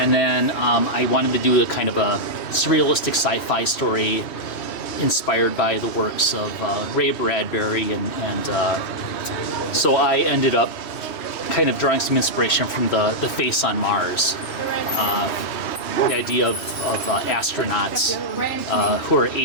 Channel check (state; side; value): late; right; 3.1 ms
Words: then I wanted to do a kind of a surrealistic sci-fi story inspired by the works of Ray Bradbury, and so I ended up kind of drawing some inspiration from the face on Mars. The idea of astronauts who are